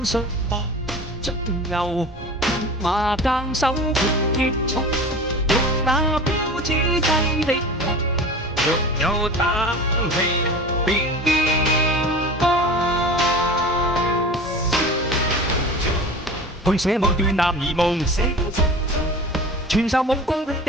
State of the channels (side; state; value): both; normal; correlation 0.36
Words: 術搏盡牛馬耕手結束，欲那標誌劑的痛，若有膽氣便去寫某段男兒夢，傳授武功的